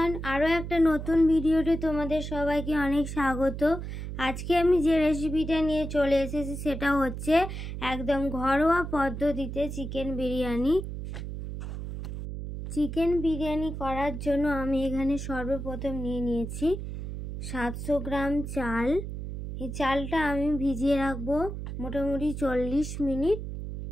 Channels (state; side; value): noise; right; hum, 7 dB below the sound